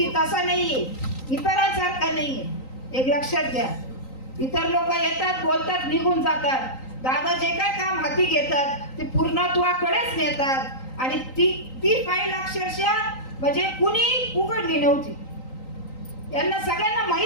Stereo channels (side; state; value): right; late; 3.9 ms